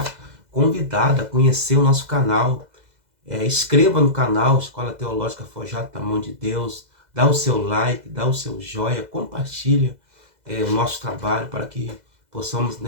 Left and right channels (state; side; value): late; left; 2.0 ms